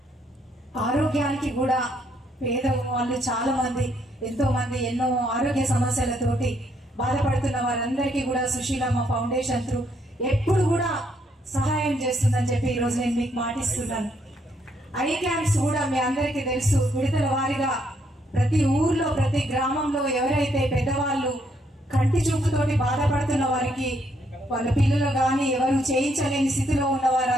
ఆరోగ్యానికి కూడా పేద వాళ్ళు చాలా మంది, ఎంతో మంది ఎన్నో ఆరోగ్య సమస్యలతోటి బాధపడుతున్న వారందరికీ కూడా సుశీలమ్మ ఫౌండేషన్ త్రూ ఎప్పుడు కూడా సహాయం చేస్తుందని చెప్పి ఈ రోజు నేను మీకు మాటిస్తున్నాను. ఐ క్యాంప్స్ కూడా మీ అందరికీ తెలుసు, విడతల వారీగా ప్రతి ఊర్లో ప్రతి గ్రామంలో ఎవరైతే పెద్దవాళ్ళు కంటి చూపుతోటి బాధపడుతున్న వారికి, వాళ్ళ పిల్లలు కానీ ఎవరు చేయించలేని స్థితిలో ఉన్న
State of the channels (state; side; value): normal; both; correlation 0.72